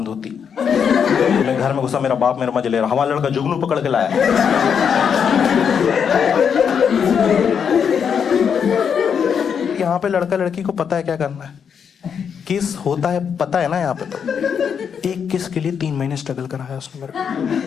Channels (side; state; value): right; quieter; 7.2 dB